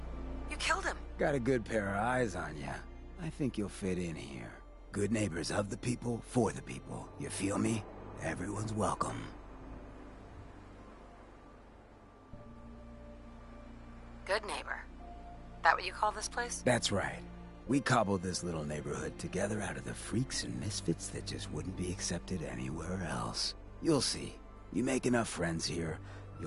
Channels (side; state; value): both; identical; correlation 1.00